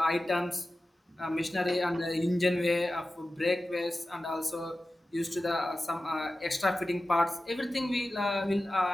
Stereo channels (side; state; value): both; normal; correlation 0.94